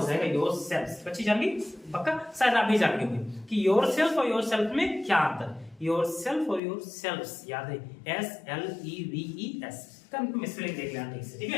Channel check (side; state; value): right; drops out; at 6.6 s